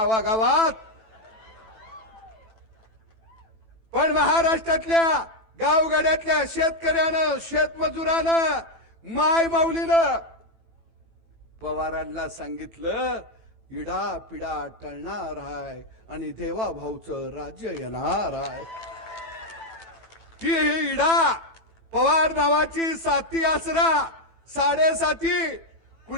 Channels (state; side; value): late; left; 18 ms